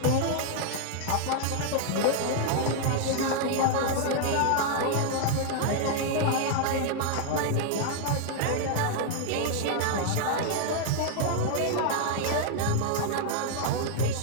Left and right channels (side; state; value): both; different; correlation 0.00